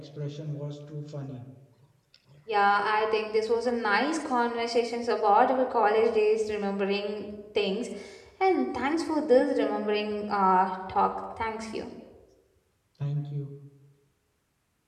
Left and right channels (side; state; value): both; identical; correlation 1.00